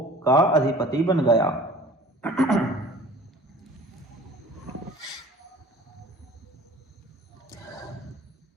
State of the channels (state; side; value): normal; both; correlation 0.46